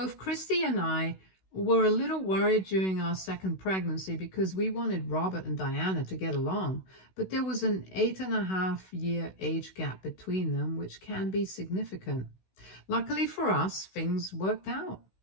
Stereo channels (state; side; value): late; right; 16 ms